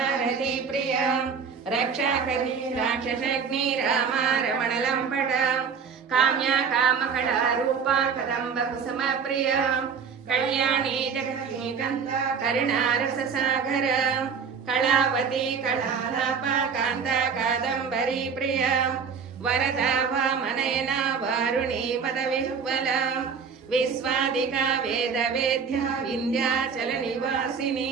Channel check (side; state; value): left; quieter; 6.2 dB